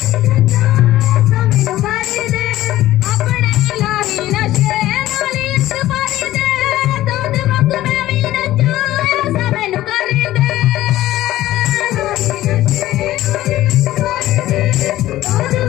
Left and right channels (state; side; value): quieter; right; 15.0 dB